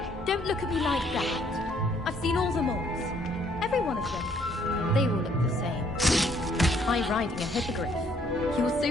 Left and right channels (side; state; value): both; normal; correlation 0.65